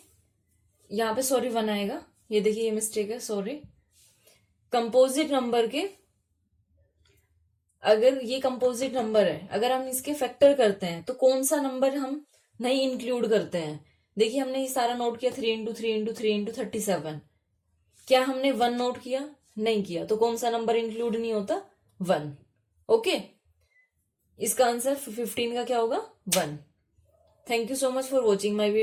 यहाँ पे सॉरी 1 आएगा, ये देखिए ये मिस्टेक है, सॉरी. कंपोजिट नंबर के, अगर ये कंपोजिट नंबर है, अगर हम इसके फैक्टर करते हैं तो कौन सा नंबर हम नहीं इंक्लूड करते हैं? देखिए हमने ये सारा नोट किया, 3 इंटू 3 इंटू 3 इंटू 37. क्या हमने 1 नोट किया? नहीं किया. तो कौन सा नंबर इंक्लूड नहीं होता? 1. ओके, इसका आंसर 15 का क्या होगा? 1. Thank you so much for watching my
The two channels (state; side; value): identical; both; correlation 1.00